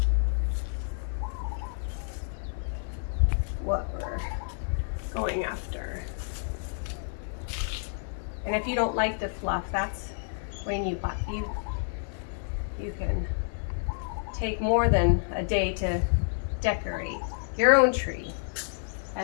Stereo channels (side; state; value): right; silent; digital silence